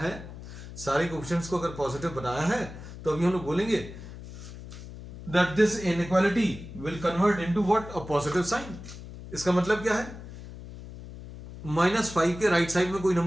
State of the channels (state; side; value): noise; left; hum, 13 dB below the sound